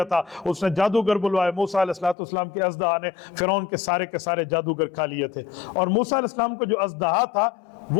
था, उसने जादूगर बुलवाए। मूसा अलैहिस्सलाम के अज़दहा ने फ़िरौन के सारे जादूगर खा लिए थे। और मूसा अलैहिस्सलाम को जो अज़दहा था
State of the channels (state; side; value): drops out; right; at 2.1 s